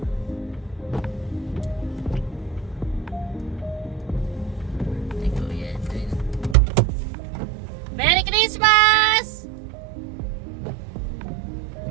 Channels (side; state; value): left; drops out; at 6.6 s